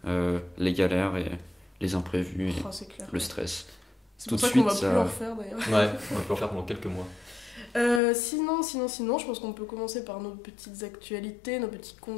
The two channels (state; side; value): drops out; right; at 8.0 s